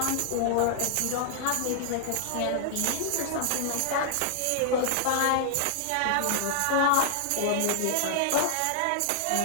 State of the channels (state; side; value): different; both; correlation -0.01